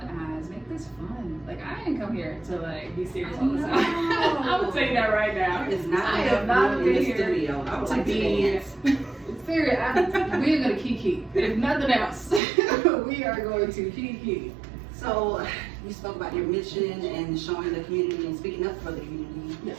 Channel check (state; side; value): drops out; left; at 12.4 s